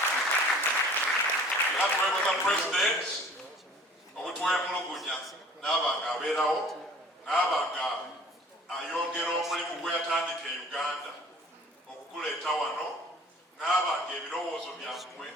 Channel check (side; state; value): both; normal; correlation 0.49